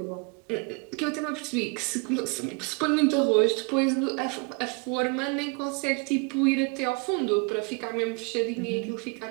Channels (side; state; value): left; quieter; 31.9 dB